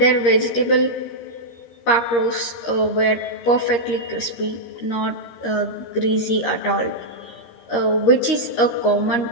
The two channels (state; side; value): late; right; 13 ms